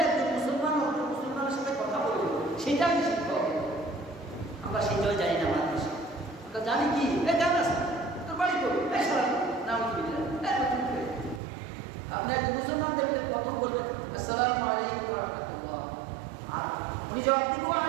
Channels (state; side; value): drops out; left; at 11.4 s